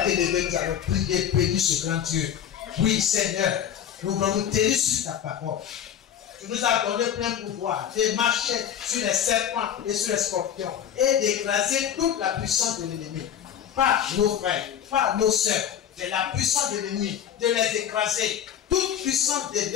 t'élever, tu vas prier, bénir ce grand Dieu. Oui, Seigneur, nous voulons nous tenir sur ta parole. Tu nous as donné plein pouvoir de marcher sur les serpents et sur les scorpions et d'écraser toute la puissance de l'ennemi. Pas nos frères, pas nos sœurs, mais la puissance de l'ennemi, de les écraser. Toute puissance de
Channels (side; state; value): right; quieter; 9.4 dB